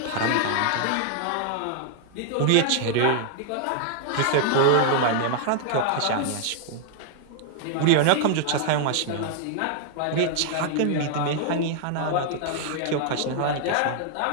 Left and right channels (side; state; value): both; different; correlation 0.00